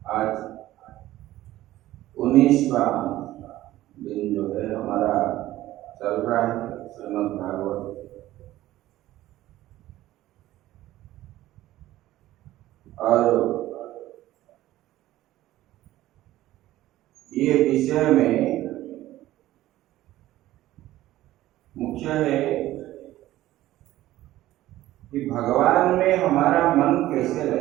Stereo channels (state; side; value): quieter; left; 15.2 dB